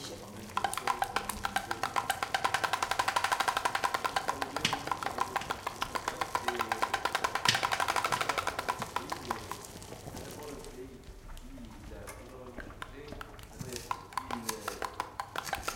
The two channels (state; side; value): identical; both; correlation 1.00